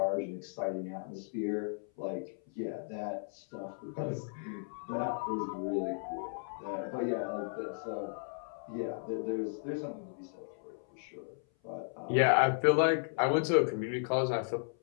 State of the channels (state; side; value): silent; right; 55 dB below the other